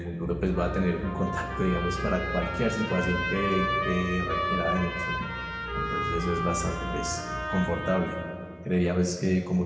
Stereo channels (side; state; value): both; identical; correlation 1.00